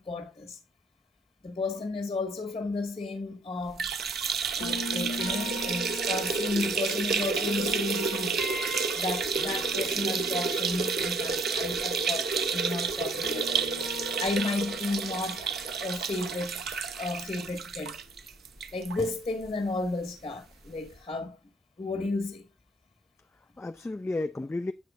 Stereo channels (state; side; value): normal; both; correlation 0.60